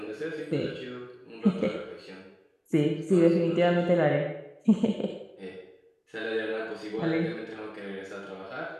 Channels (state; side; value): identical; both; correlation 1.00